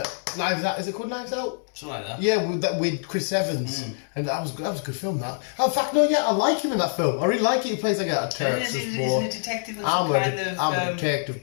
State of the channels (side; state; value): right; silent; 62 dB below the other